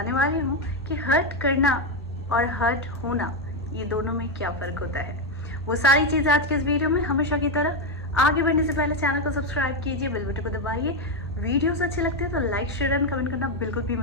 वाली हूँ कि हर्ट करना और हर्ट होना, ये दोनों में क्या फ़र्क होता है। वो सारी चीज़ें आज के इस वीडियो में। हमेशा की तरह आगे बढ़ने से पहले चैनल को सब्सक्राइब कीजिए, बेल बटन को दबाइए। वीडियोस अच्छे लगते हैं तो लाइक, शेयर एंड कमेंट करना बिल्कुल भी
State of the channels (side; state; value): both; normal; correlation 0.07